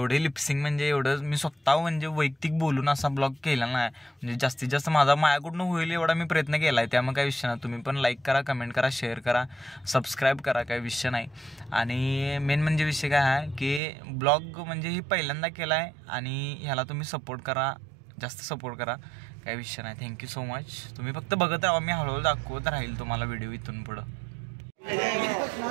लिपसिंग म्हणजे एवढं मी स्वतः म्हणजे वैयक्तिक बोलून असा ब्लॉग केला नाही. म्हणजे जास्तीत जास्त माझ्याकडून होईल एवढा मी प्रयत्न केला आहे. त्यामुळे काही विषय नाही. तुम्ही पण लाईक करा कमेंट करा शेअर करा सबस्क्राईब करा. काही विषय नाही. आणि मेन म्हणजे विषय काय आहे की ब्लॉग म्हणजे ही पहिल्यांदा केला आहे आणि ह्याला तुम्ही सपोर्ट करा जास्त सपोर्ट करा. काही विषय नाही. Thank you so much. तुम्ही फक्त बघत राहा. मी हळूहळू दाखवत राहील तुम्हाला व्हिडिओ इथून पुढं.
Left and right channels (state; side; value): drops out; left; at 13.8 s